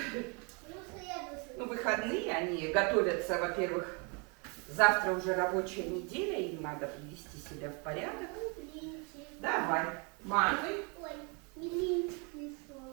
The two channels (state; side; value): quieter; left; 33.0 dB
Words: Ну, выходные они готовятся, во-первых, завтра уже рабочая неделя, им надо привести себя в порядок. Давай, мазай. Ой, милинчик